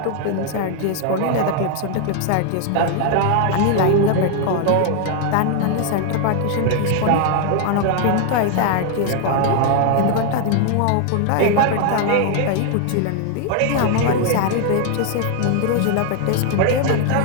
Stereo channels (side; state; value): both; different; correlation 0.00